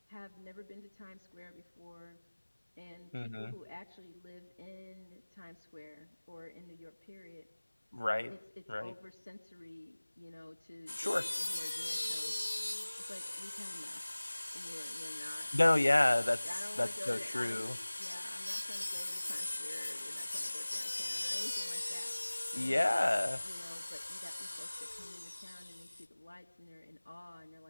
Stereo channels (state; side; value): inverted; both; correlation -1.00